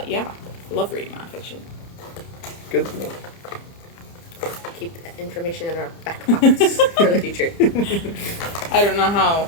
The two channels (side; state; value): right; late; 30 ms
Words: Yeah, I love reading nonfiction. Good to know. Keep that information in our back pockets for the future. I don't know